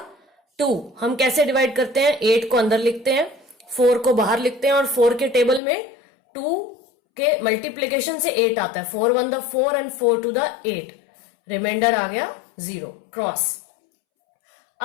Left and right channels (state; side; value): drops out; right; at 5.6 s